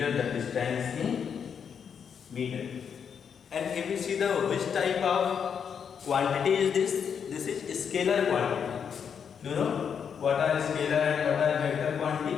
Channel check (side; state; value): right; quieter; 7.2 dB